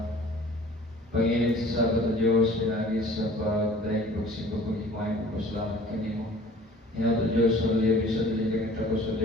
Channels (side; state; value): both; normal; correlation 0.49